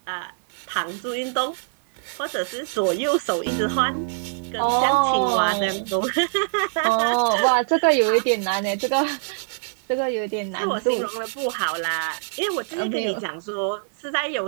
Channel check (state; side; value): silent; left; digital silence